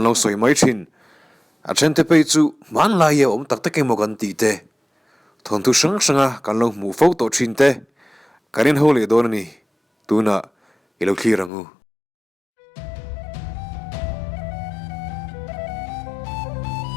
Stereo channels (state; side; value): drops out; right; at 11.5 s